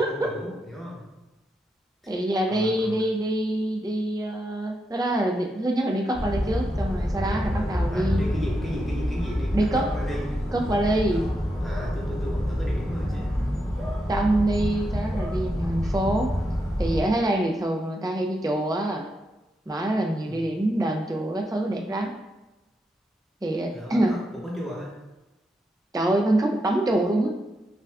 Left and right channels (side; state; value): both; normal; correlation 0.84